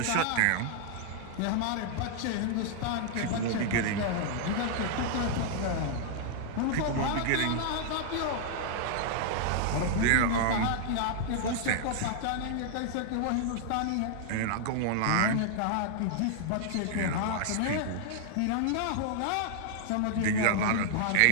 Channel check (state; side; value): different; both; correlation -0.01